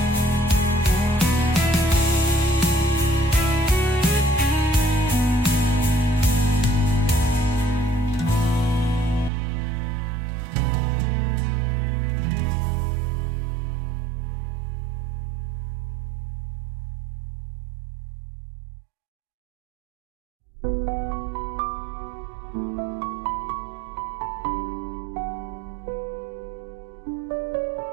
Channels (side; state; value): left; drops out; at 9.3 s